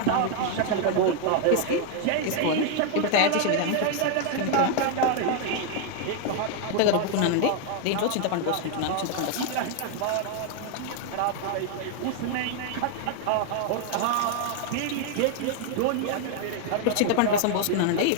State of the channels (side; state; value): both; different; correlation 0.00